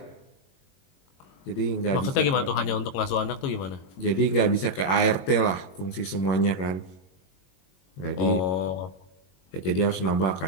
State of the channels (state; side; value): late; right; 22 ms